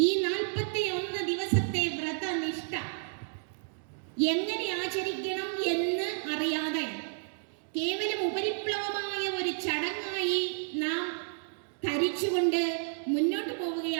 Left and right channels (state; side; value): silent; left; digital silence